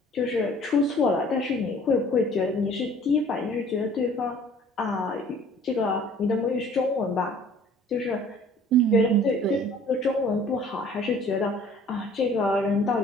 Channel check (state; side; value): normal; both; correlation 0.52